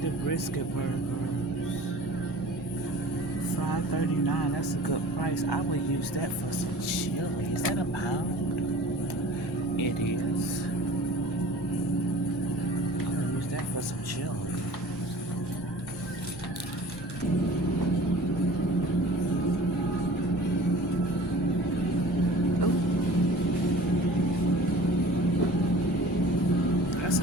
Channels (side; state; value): both; normal; correlation 0.43